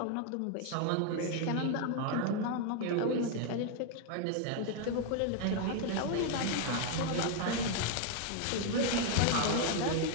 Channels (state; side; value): different; both; correlation 0.01